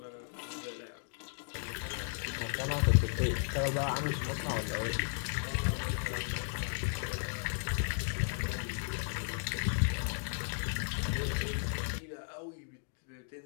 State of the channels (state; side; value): silent; right; digital silence